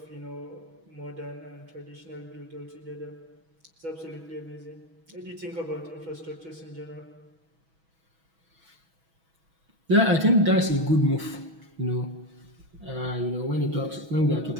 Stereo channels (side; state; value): left; late; 6.2 ms